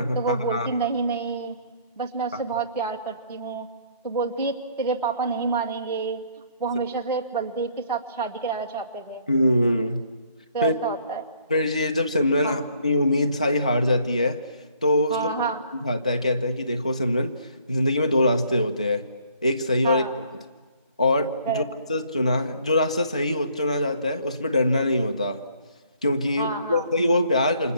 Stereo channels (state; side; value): inverted; both; correlation -0.62